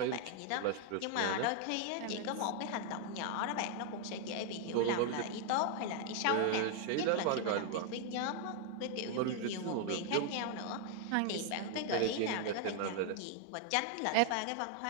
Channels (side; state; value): both; different; correlation 0.00